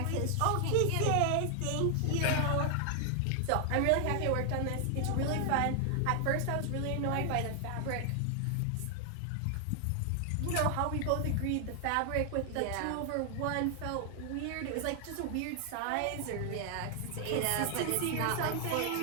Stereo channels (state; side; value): different; both; correlation 0.00